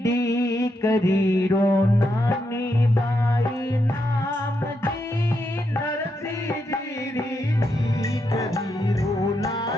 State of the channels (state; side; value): normal; both; correlation 0.81